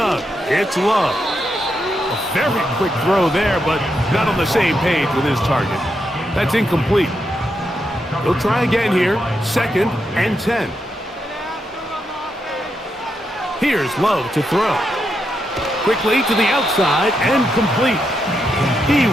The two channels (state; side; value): normal; both; correlation 0.83